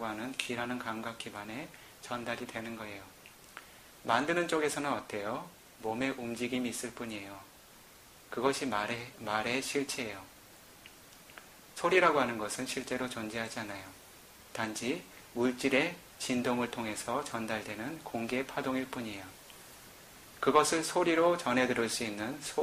하는 귀라는 감각 기반에 전달이 되는 거예요. 만드는 쪽에서는 어때요? 몸의 움직임이 있을 뿐이에요. 그것이 말의 실체예요. 소리라고 하는 것은 실제로 존재하지 않아요. 단지 물질의 진동을 통해서 전달되는 공기의 파동일 뿐이에요. 그것을 소리로 전해 들을 수 있는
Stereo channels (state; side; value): identical; both; correlation 1.00